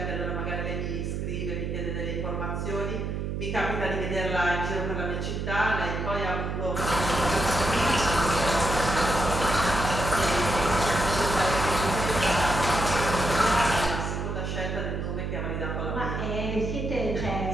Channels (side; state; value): right; noise; hum, 3 dB below the sound